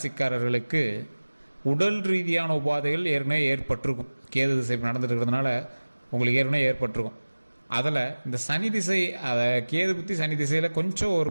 உடல் ரீதியான உபாதைகள் ஏற்கனவே ஏற்பட்டிருக்கும். கேது திசை நடந்துட்டு இருக்கிறதுனால உங்களுக்கு ஏற்கனவே ஏற்பட்டிருக்கும். அதில் இந்த சனி திசை, அதை கேது புத்தி சனி திசையில் கொஞ்சம்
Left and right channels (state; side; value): inverted; both; correlation -1.00